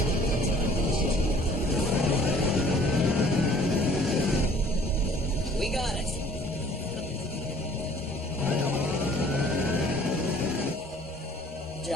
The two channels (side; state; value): both; normal; correlation 0.54